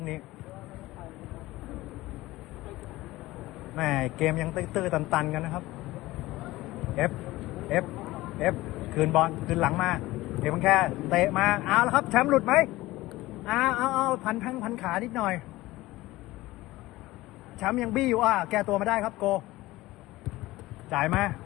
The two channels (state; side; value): quieter; right; 18.3 dB